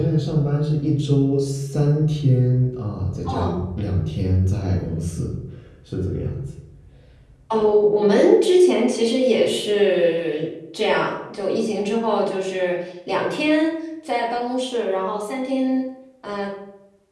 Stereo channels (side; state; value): both; identical; correlation 1.00